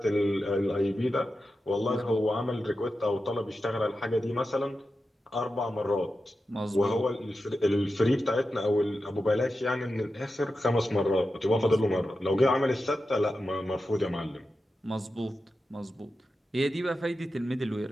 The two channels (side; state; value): both; normal; correlation 0.91